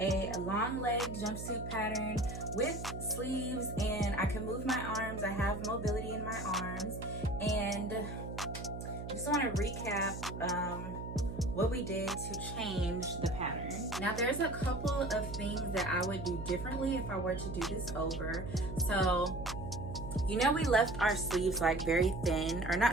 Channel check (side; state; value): right; noise; hum, 8 dB below the sound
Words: long leg jumpsuit pattern with sleeves, and I can move my arms. I have mobility in my arms, and just want to recap what we did to change the pattern. Now there's a couple of things that I would do differently if I were to do this over. So, you know, we left our sleeves like very thin, or